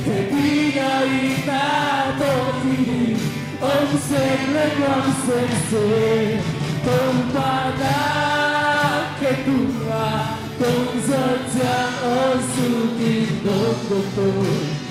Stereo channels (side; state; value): both; identical; correlation 1.00